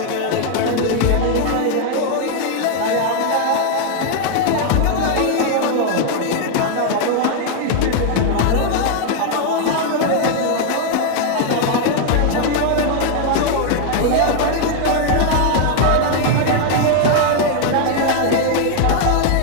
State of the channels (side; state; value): both; different; correlation 0.00